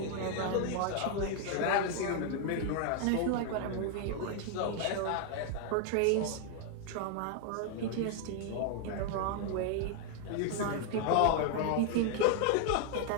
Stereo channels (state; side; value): different; both; correlation 0.00